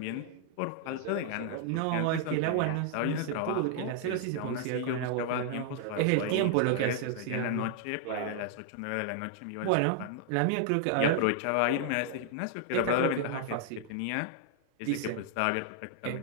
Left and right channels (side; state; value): both; different; correlation 0.00